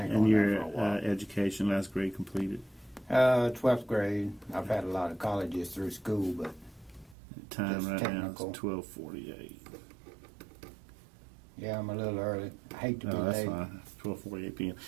And on that your for a while. education, last grade completed? 12th grade. I've had a lot of colleges through school, but Time Just right technical. now is 12:48. yeah, I'm a little early. I hate to be Oh, that's late. fine. 12:48 p.m.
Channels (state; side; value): drops out; left; at 7.2 s